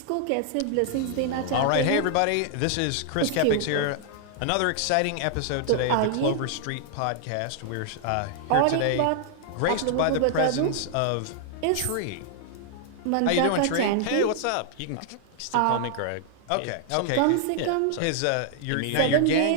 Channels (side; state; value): both; different; correlation -0.01